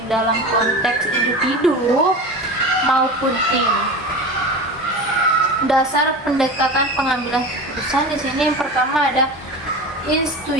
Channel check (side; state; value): both; normal; correlation 0.30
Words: dalam konteks individu maupun tim. Dasar pendekatan pengambilan keputusan di sini yang pertama ada